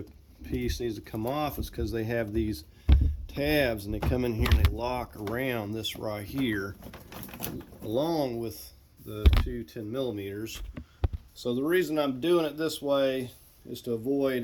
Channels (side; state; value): both; identical; correlation 1.00